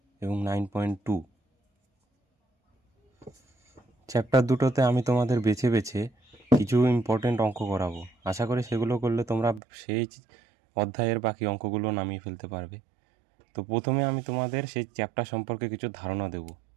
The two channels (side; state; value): left; drops out; at 9.6 s